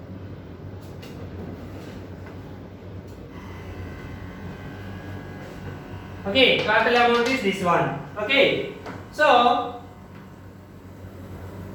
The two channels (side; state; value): both; identical; correlation 1.00